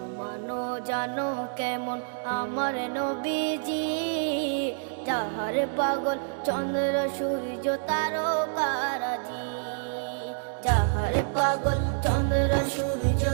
জানো জানো কেমন আমার নবীজি, যাহার পাগল চন্দ্র সূর্য তারকারাজি, যাহার পাগল চন্দ্র সূর্য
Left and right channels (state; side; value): silent; left; digital silence